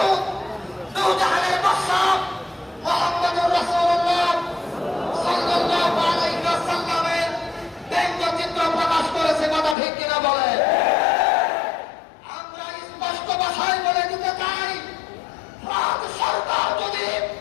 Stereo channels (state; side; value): drops out; right; at 9.8 s